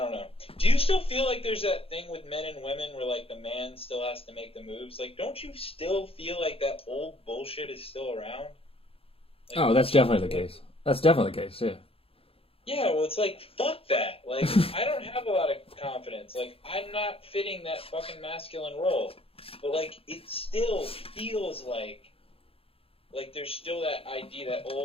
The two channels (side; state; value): right; late; 0.27 ms